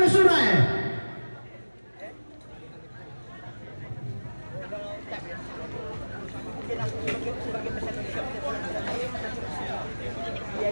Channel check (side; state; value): both; inverted; correlation -1.00